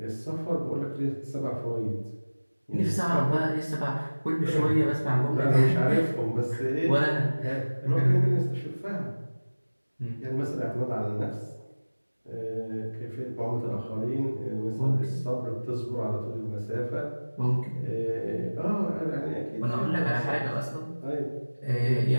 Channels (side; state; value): both; inverted; correlation -1.00